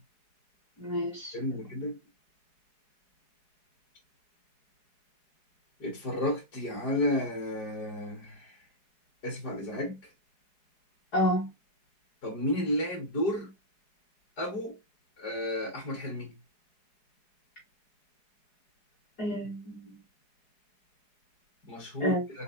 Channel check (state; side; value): late; right; 4.8 ms